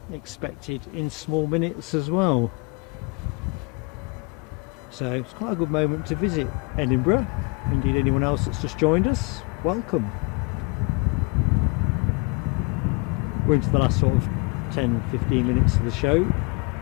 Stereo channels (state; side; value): quieter; right; 31.4 dB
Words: expected in small minutes as well. So it's quite a good moment to visit Edinburgh. Indeed, anyone else that's just joined us, welcome. We're into the last sort of 10-15 minutes of the show.